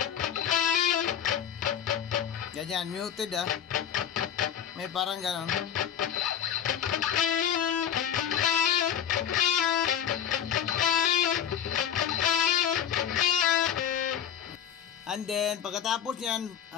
Ganyan, muted May parang ganon. And then, pagkatapos yan,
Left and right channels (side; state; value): right; quieter; 9.3 dB